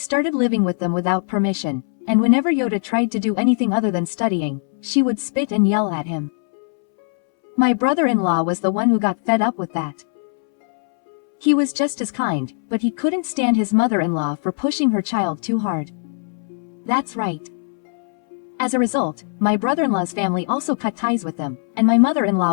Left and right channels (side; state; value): right; silent; 65 dB below the other